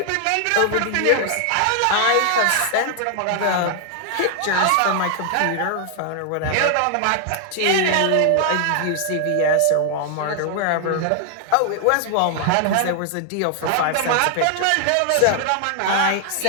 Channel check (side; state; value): both; different; correlation 0.00